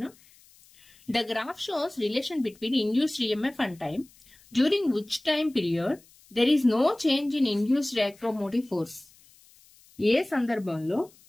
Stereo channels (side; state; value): left; noise; hiss, 28 dB below the sound